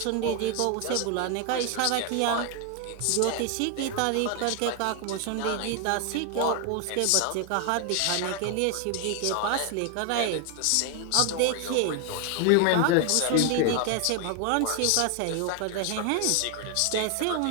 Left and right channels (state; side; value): different; both; correlation 0.01